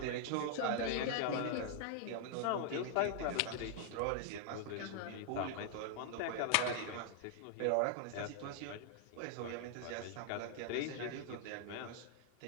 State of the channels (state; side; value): different; both; correlation -0.01